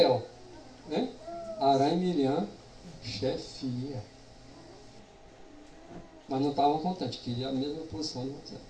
Né? Arão e Miriam, chefia. Mas não estavam contentes, queriam a mesma posição de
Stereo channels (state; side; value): identical; both; correlation 1.00